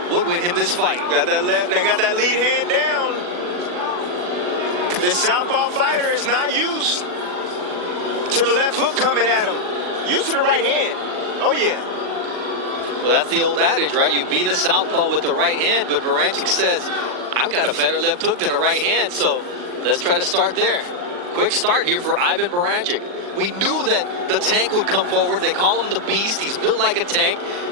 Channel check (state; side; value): late; left; 40 ms